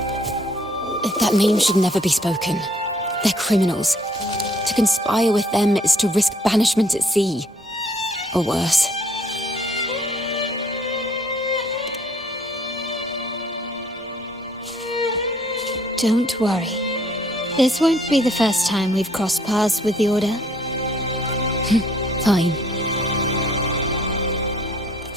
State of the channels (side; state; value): both; normal; correlation 0.62